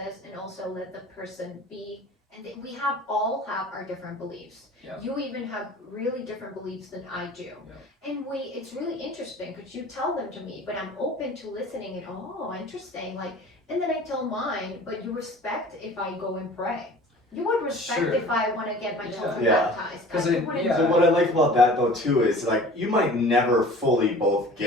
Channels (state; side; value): normal; both; correlation 0.44